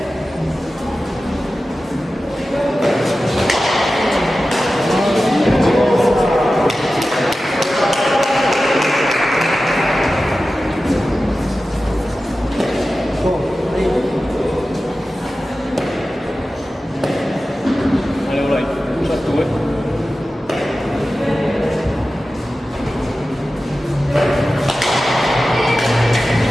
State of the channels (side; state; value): both; normal; correlation 0.94